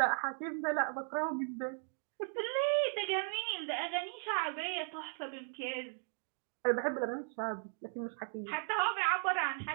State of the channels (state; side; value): silent; left; 53 dB below the other